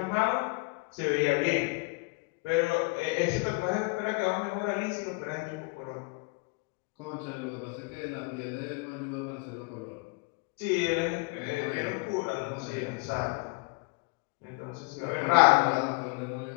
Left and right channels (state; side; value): quieter; right; 28.9 dB